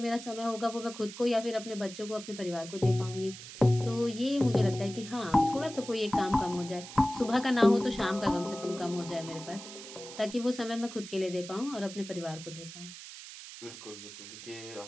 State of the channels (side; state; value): right; noise; hiss, 13 dB below the sound